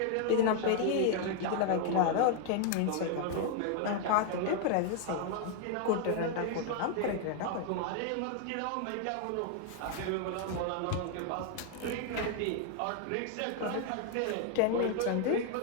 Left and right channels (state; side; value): different; both; correlation 0.00